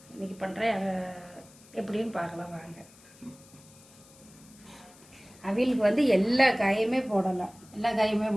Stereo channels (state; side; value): noise; left; hiss, 24 dB below the sound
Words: இன்றைக்கி பண்ணுறேன். அதை எப்படின்னு பார்க்கலாம் வாங்க. அவியலுக்கு வந்து எல்லா காயுமே போடலாம்.